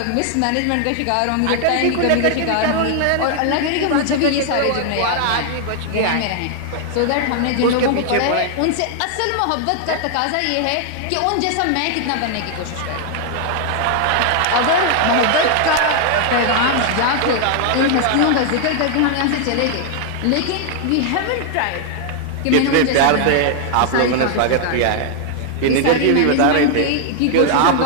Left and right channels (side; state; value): both; different; correlation 0.00